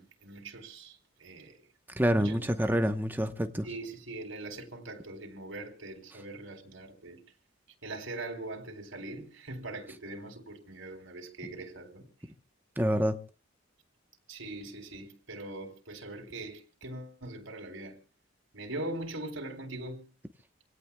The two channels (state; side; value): normal; both; correlation 0.76